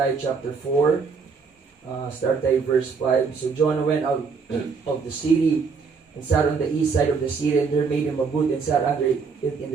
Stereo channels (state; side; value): quieter; left; 5.2 dB